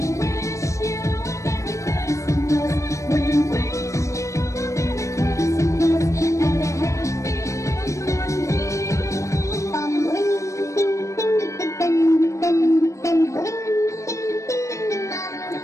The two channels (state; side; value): late; right; 0.15 ms